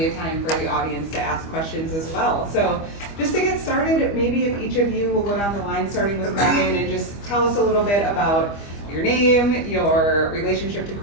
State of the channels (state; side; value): late; right; 25 ms